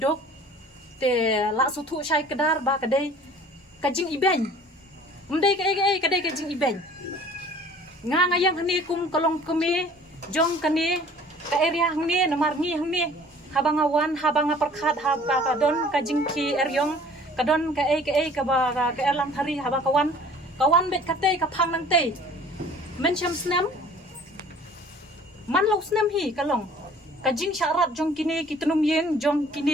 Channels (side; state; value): both; normal; correlation 0.50